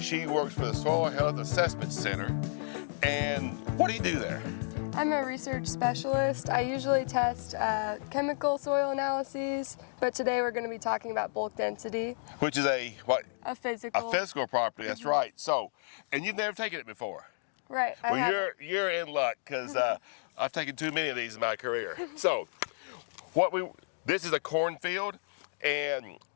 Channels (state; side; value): silent; right; digital silence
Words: she works for the Soil Health Assessment Center. And what do you do there? I'm a research specialist. I usually test chemical soil analyses, but today we're going to be talking about bulk density. Which is a what? A physical. A physical property, that's right. So, and you've never taken it before. Right. Well, you're in luck, because I've taken too many of these in my career. So, this is a cornfield, and